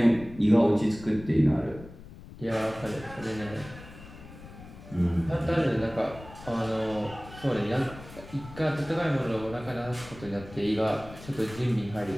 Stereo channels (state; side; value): noise; left; rumble, 16 dB below the sound